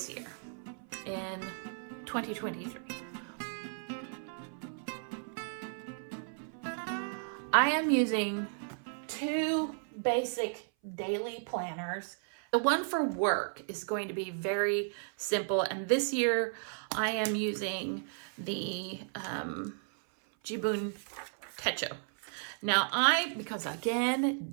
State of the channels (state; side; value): silent; left; 55 dB below the other